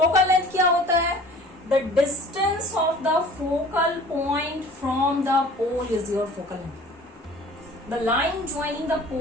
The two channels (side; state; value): both; normal; correlation 0.46